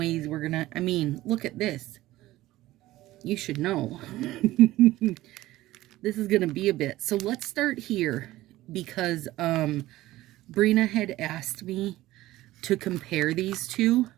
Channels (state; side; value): quieter; left; 16.5 dB